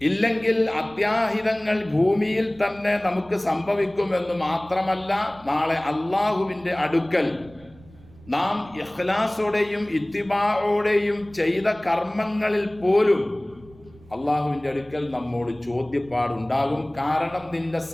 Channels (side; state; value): right; noise; rumble, 24 dB below the sound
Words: ഇല്ലെങ്കിൽ അത്യാഹിതങ്ങൾ ഭൂമിയിൽ തന്നെ നമുക്ക് സംഭവിക്കുമെന്ന് മാത്രമല്ല, നാളെ അള്ളാഹുവിന്റെ അടുക്കൽ നാം ഇഖ്ലാസോടെയും ഇത്തിബാഓടെയും ചെയ്ത കർമ്മങ്ങളിൽ പോലും അള്ളാഹുവിന്റെ അടുക്കൽ നമ്മോട് ചോദ്യപ്പാടുണ്ടാകും. കാരണം നിന്റെ